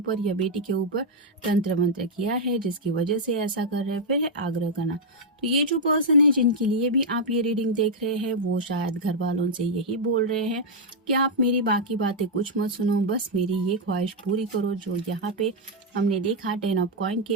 या बेटी के ऊपर तंत्र मंत्र किया है, जिसकी वजह से ऐसा कर रहे हैं। फिर है आग्रह करना, तो ये जो पर्सन है जिनके लिए भी आप ये रीडिंग देख रहे हैं वो शायद घर वालों से यही बोल रहे हैं कि आप मेरी बाकी बातें कुछ मत सुनो, बस मेरी ये ख्वाहिश पूरी करो। जो यहाँ पे हमने देखा 10 ऑफ कॉइन की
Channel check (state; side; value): normal; both; correlation -0.03